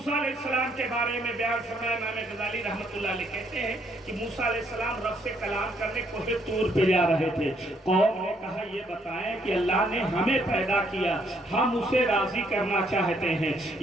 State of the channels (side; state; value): both; normal; correlation 0.69